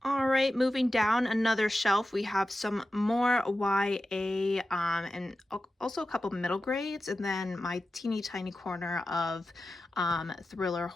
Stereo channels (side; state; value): both; normal; correlation 0.92